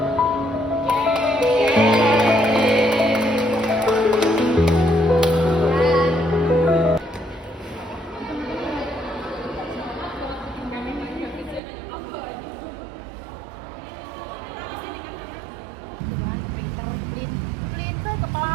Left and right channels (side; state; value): left; drops out; at 11.6 s